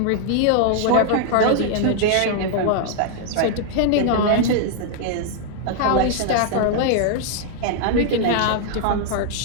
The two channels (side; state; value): both; different; correlation -0.01